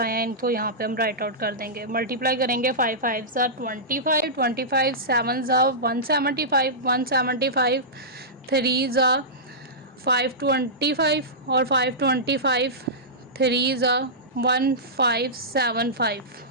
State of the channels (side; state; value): both; normal; correlation -0.15